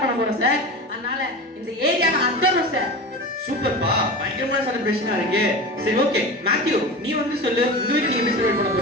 பண்ண போறோம் சார். அதனால இந்த ஏரியாவை அந்தரும் சார். சூப்பர்ப்பா, பயங்கரமான செலிப்ரேஷனா இருக்கு. சரி ஓகே மேத்யூ நீ வந்து சொல்லு உங்க வீட்ல நீங்க எப்படி செலிப்ரேட் பண்ண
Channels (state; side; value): normal; both; correlation 0.29